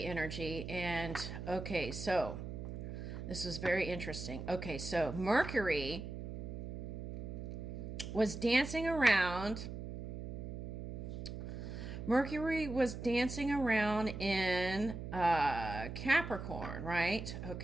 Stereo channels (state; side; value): noise; right; hum, 7 dB below the sound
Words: energy, and okay, so this was very interesting. Okay, so Mercury was dancing around. Mercury was dancing around in Capricorn, right?